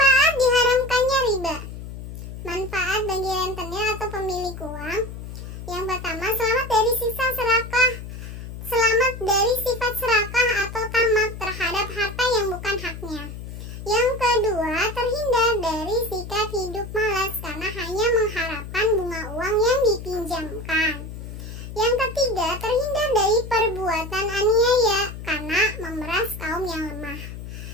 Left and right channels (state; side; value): noise; left; hum, 10 dB below the sound